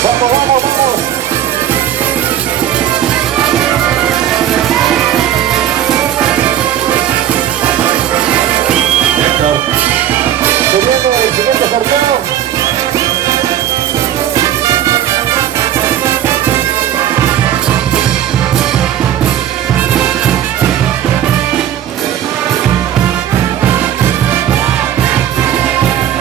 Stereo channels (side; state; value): left; quieter; 11.0 dB